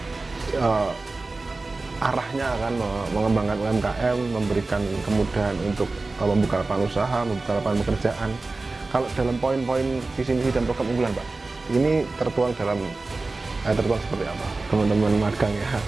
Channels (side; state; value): left; quieter; 3.4 dB